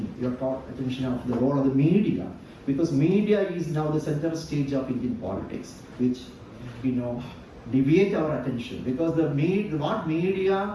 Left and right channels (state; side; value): identical; both; correlation 1.00